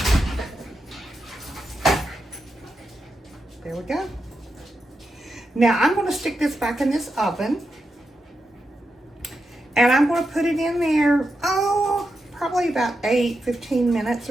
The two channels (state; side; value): normal; both; correlation 0.87